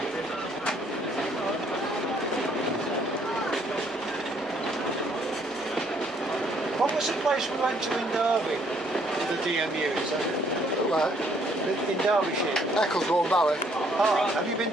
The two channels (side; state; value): both; normal; correlation 0.66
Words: what was the place we went to in Derby? The DMU, is that it? Well, in Derbyshire. Ecclesbourne Valley. Ah, have you been